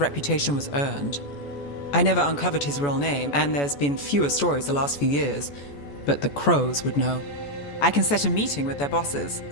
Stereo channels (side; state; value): right; late; 14 ms